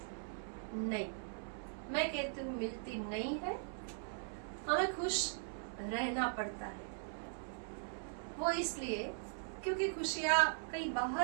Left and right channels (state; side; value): silent; left; 51 dB below the other